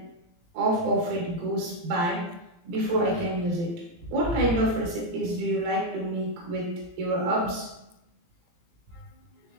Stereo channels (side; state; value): left; late; 17 ms